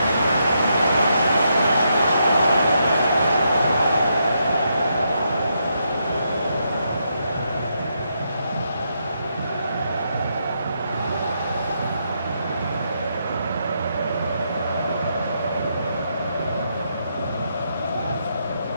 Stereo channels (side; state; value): both; inverted; correlation -0.79